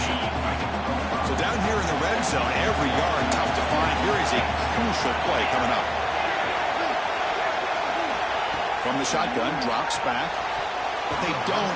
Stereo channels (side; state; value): both; identical; correlation 1.00